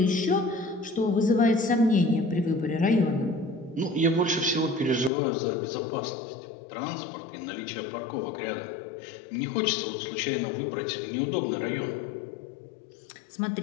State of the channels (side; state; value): right; drops out; at 5.1 s